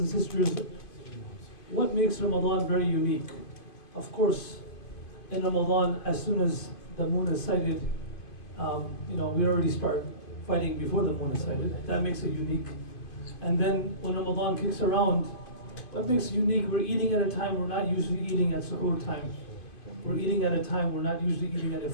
and sisters, what makes Ramadan very unique? Of course, in Ramadan, as soon as the moon is sighted, we already start fighting before the moon is sighted. That makes it unique. And then when Ramadan kicks around, what makes it unique? We're eating at a time we're not usually eating at suhoor time. We're eating at a time we're not usually eating at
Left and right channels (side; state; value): right; late; 2.5 ms